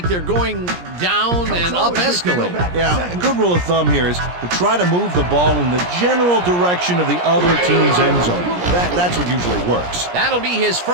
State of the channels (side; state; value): left; late; 17 ms